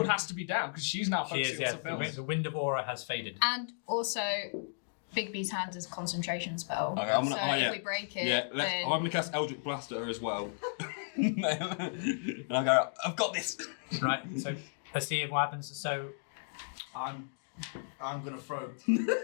has to be down, because she's now She focusing is, on yeah. something else. The wind of aura has faded. And also, Bigby's hand is a concentration spell. Okay, I'm gonna- so oh, yeah. if we break it, Yeah, then... I'm going to cast Eldritch Blast at her as well. And I'll go, "I've got this." Right, so let's see what happens. So, I'm gonna throw.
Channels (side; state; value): right; silent; digital silence